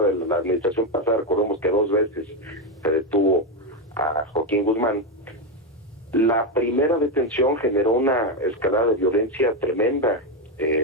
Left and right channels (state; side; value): normal; both; correlation 0.08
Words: la administración pasada, recordemos que 2 veces se detuvo a Joaquín Guzmán. La primera detención generó una escalada de violencia tremenda